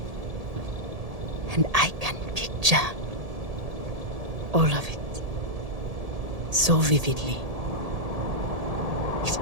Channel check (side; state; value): left; late; 1.7 ms